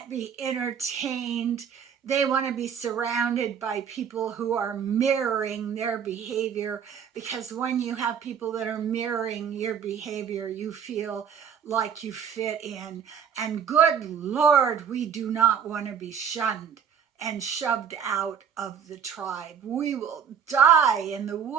be entertained. They want to be surrounded by people who are mirroring their behavior, because when you have people that are mirroring your behavior, you feel like you fit in. And good Lord, we do not want to be shunned and shoved out of the tribe. We will die in the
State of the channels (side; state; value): left; quieter; 7.7 dB